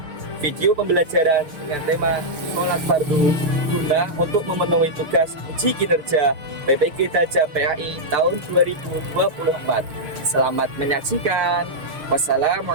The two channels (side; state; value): left; late; 6.5 ms